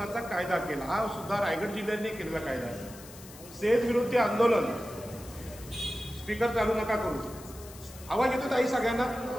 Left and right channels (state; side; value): noise; left; hiss, 18 dB below the sound